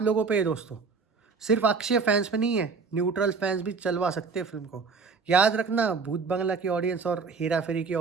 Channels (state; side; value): quieter; left; 4.9 dB